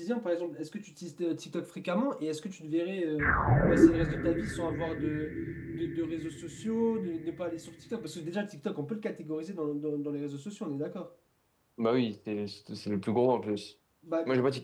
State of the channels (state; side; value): identical; both; correlation 1.00